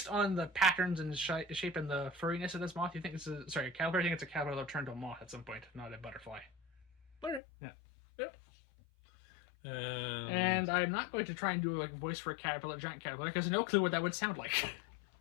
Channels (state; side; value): drops out; right; at 7.4 s